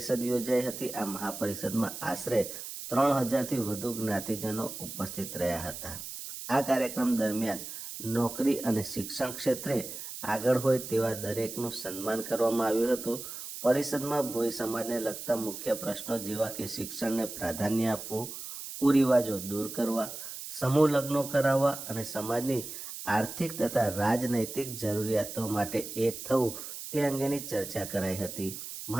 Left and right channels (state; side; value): noise; right; hiss, 9 dB below the sound